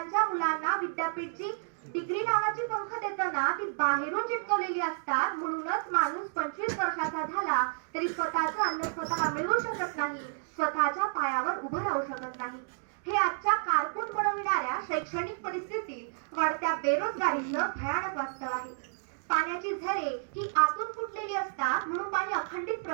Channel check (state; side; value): silent; left; digital silence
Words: मुलांना विद्यापीठची डिग्री नावाची पंख देताना ती बाहेरून चिटकवलेली असतात, म्हणूनच माणूस 25 वर्षाचा झाला तरी स्वतःचं अन्न स्वतः मिळवू शकत नाही, स्वतःच्या पायावर उभं राहू शकत नाही. हे आजच्या कारकून बनविणाऱ्या शैक्षणिक परिस्थितीत वाढत्या बेरोजगारीचं भयानक वास्तव आहे. पाण्याची झरे ही आतून फुटलेली असतात, म्हणून पाणी अखंडित